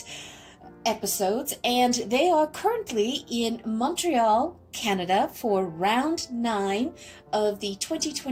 episodes, and they are currently in Montreal, Canada for round 9 of the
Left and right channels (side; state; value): both; identical; correlation 1.00